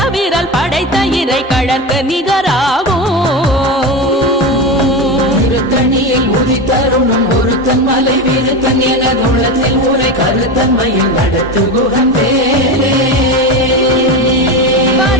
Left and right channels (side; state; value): both; normal; correlation 0.20